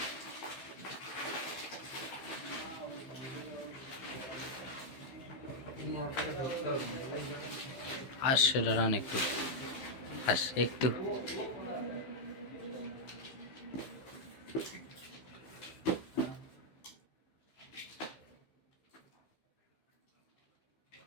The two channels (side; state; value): right; late; 15 ms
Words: আসছে দাঁড়ান একটু, একটু